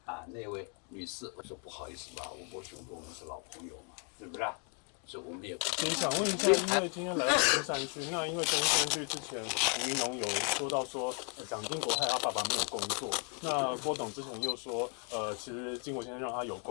那位女士？我说不好意思吧，吴伯雄跟我们是老朋友嘛，是不是？所以我们也不。想问一下，因为今天来到中山区，那因为中山区之前吴怡农有说到说，蒋经国害他爸爸没有工作，那郭董之前又说，其实经国先生让他有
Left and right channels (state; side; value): quieter; right; 39.7 dB